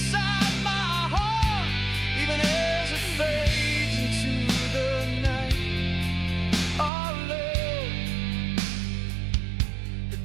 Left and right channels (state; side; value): drops out; left; at 6.9 s